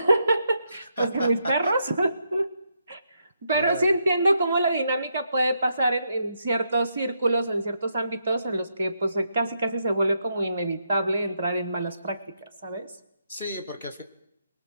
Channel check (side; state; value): both; inverted; correlation -0.80